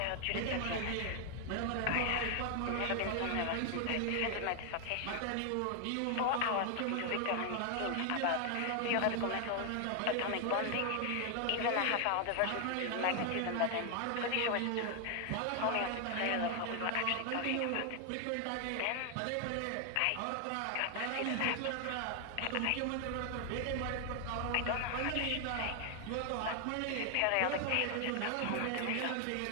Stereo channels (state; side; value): different; both; correlation 0.00